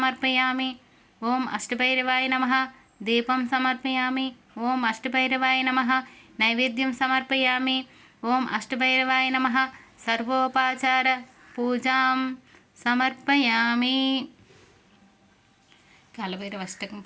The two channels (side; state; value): both; identical; correlation 1.00